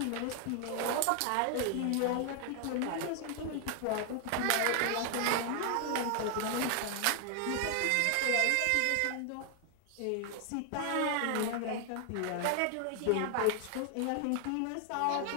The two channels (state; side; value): different; both; correlation 0.00